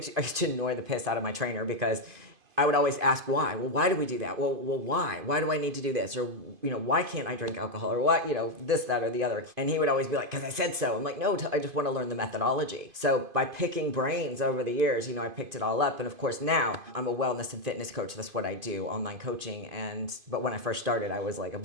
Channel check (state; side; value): late; left; 2.5 ms